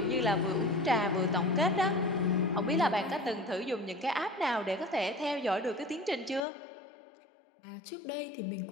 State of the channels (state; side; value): drops out; right; at 6.4 s